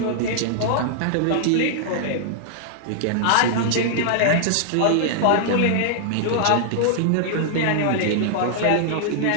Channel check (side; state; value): both; different; correlation -0.01